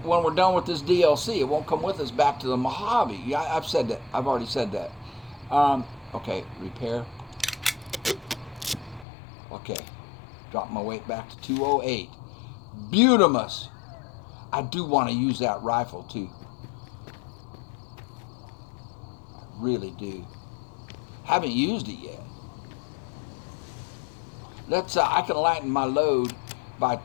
when we're done with this DLC, it won't come with us back to the Mojave. Yeah, I've said that. I've already said that. Okay, repair. Okay, drop my weight back to 208. Beautimus. I do want to use that rifle too. I really do. Haven't used it yet. Let's. I can lighten my load by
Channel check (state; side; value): drops out; right; at 9.1 s